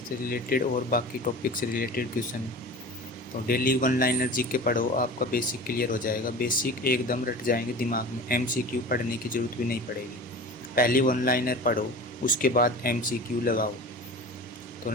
रिलेटेड और बाकी टॉपिक से रिलेटेड क्वेश्चन। तो डेली वन लाइनर जीके पढ़ो, आपका बेसिक क्लियर हो जाएगा। बेसिक एकदम रट जाएंगे दिमाग में, एमसीक्यू पढ़ने की ज़रूरत भी नहीं पड़ेगी। पहले वन लाइनर पढ़ो, उसके बाद एमसीक्यू लगाओ।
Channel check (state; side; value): normal; both; correlation 0.36